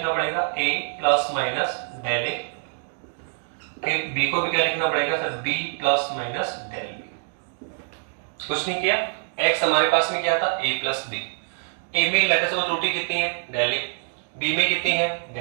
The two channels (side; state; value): left; silent; digital silence